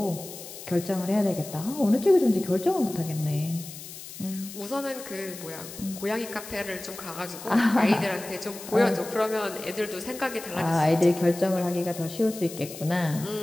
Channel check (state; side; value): noise; left; hiss, 13 dB below the sound